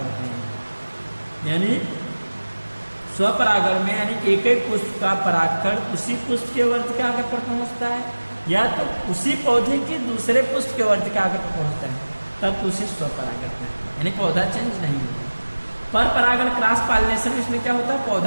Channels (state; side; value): inverted; both; correlation -1.00